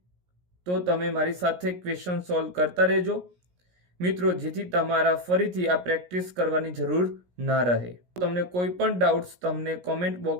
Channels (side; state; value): left; late; 17 ms